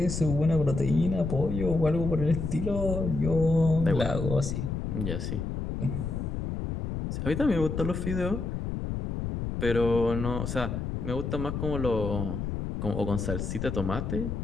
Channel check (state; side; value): noise; left; rumble, 3 dB below the sound